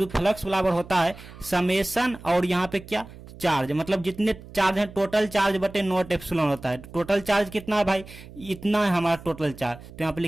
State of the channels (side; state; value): right; noise; hum, 17 dB below the sound